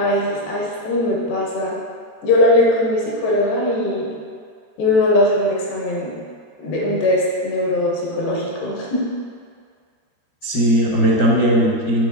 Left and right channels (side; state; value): right; late; 13 ms